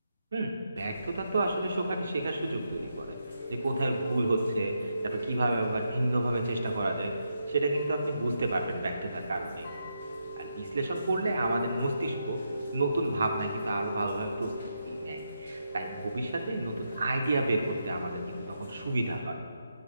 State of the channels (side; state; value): both; inverted; correlation -0.83